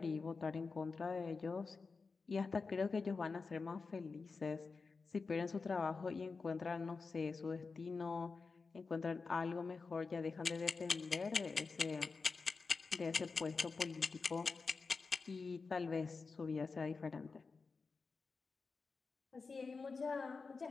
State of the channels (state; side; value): quieter; right; 4.5 dB